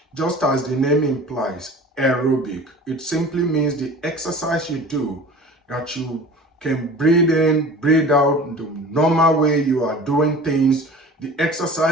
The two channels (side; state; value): both; normal; correlation 0.40